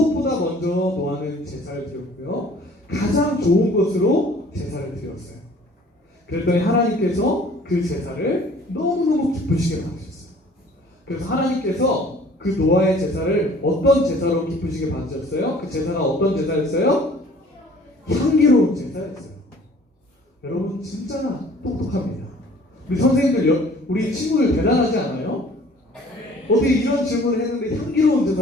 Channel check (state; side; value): normal; both; correlation 0.52